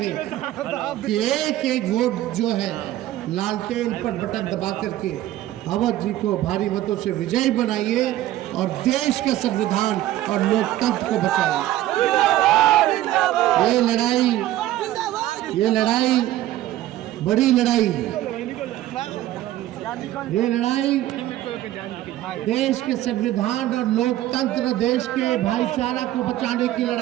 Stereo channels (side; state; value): left; quieter; 14.3 dB